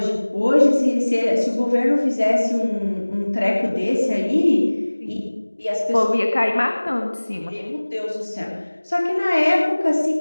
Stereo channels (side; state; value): both; inverted; correlation -1.00